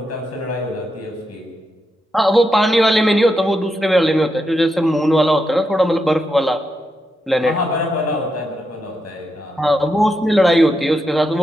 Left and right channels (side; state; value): both; normal; correlation 0.84